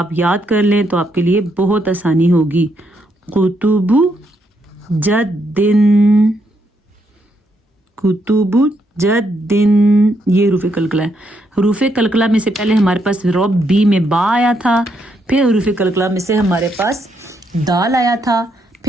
یاد کر لیں تو آپ کے لیے بہت آسانی ہوگی. قطب جدن, کتب جدن, یہ حروف کلکلہ ہے. حروف کلکلہ میں سے پہلے ہمارے پاس ربی میں با آیا تھا, پھر حروف کلکلہ میں سے ہمارے پاس دال آیا تھا,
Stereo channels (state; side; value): normal; both; correlation 0.77